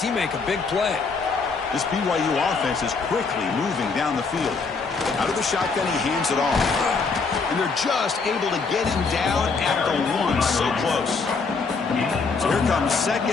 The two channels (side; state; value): right; quieter; 4.6 dB